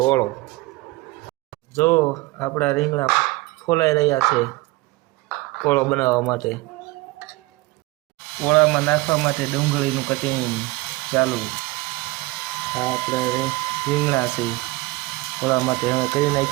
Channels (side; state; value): left; quieter; 21.4 dB